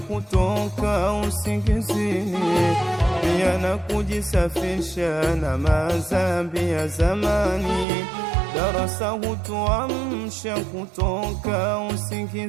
usingizini, pia na kujisafisha na madhambi ya zamani. Darasa hutuamsha kutoka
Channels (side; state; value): left; drops out; at 7.9 s